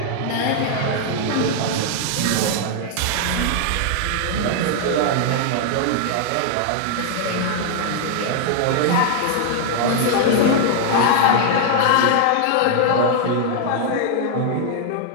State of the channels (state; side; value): different; both; correlation 0.00